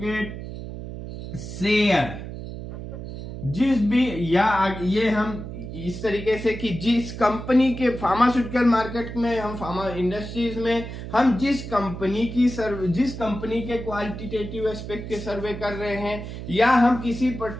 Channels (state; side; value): noise; right; hum, 9 dB below the sound